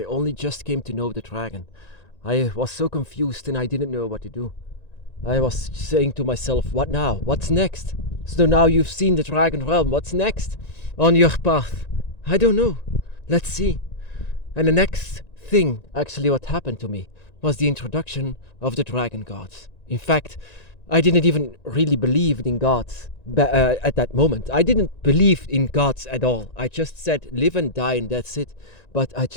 only just came to know the dragon. I was so confused and I didn't know what to do. I was saying to myself, what now? What's next? So now you've seen the dragon realm, what's next on your path? I don't know. Let's see. And the next thing, actually what happened to me, was the introduction of the dragon gods. In fact, I didn't even really believe in gods at that moment. I didn't believe in gods at all. I just said live and die and that's it. But I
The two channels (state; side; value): late; right; 1.9 ms